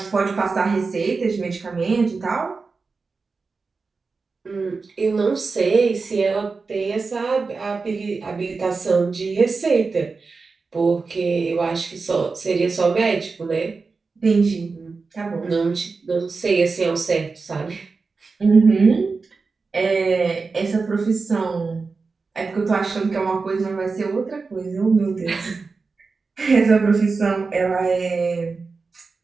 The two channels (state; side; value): quieter; left; 4.4 dB